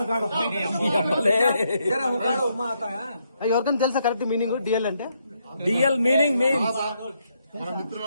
తెలుసా కరెక్ట్ మీనింగ్ డిఎల్ అంటే? డిఎల్ మీనింగ్ మన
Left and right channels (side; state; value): both; inverted; correlation -0.77